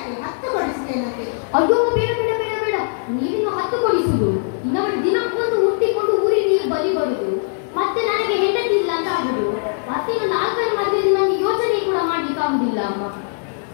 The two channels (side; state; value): right; silent; 66 dB below the other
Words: ಅಯ್ಯೋ ಬೇಡ, ನೀವಿನ್ನು 10 ಕೊಡಿಸುದು. ಇನ್ನೊಂದು ದಿನಕ್ಕೊಂದು ಹುಟ್ಟಿಕೊಂಡು ಊರಿಗೆ ನೀವು ಬಲಿ ಬರುದು, ಮತ್ತೆ ನನಗೆ ಹೆಂಡತಿ ಇಲ್ಲ ಅಂತ ಆಗುದು. ಮತ್ತೆ ಇನ್ನು 4 ಮದುವೆ ನನಗೆ ಯೋಚನೆ ಕೂಡ ಮಾಡ್ಲಿಕ್ಕೆ ಆಗುದಿಲ್ಲ ಅಮ್ಮ.